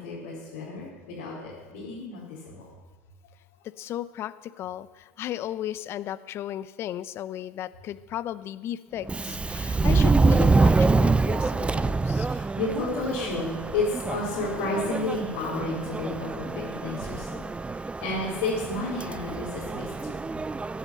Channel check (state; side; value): normal; both; correlation 0.74